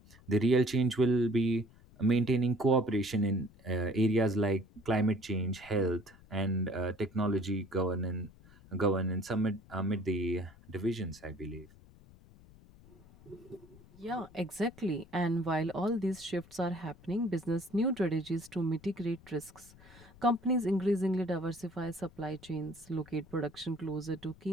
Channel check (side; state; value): left; noise; rumble, 23 dB below the sound